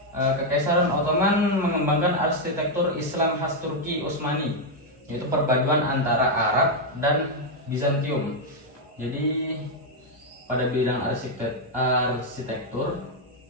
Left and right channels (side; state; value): both; normal; correlation 0.00